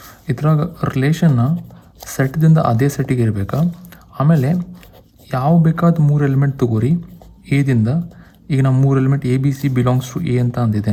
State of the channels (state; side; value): identical; both; correlation 1.00